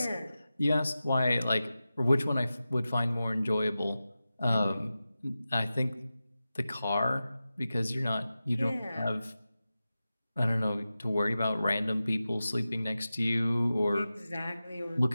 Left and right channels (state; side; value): inverted; both; correlation -0.94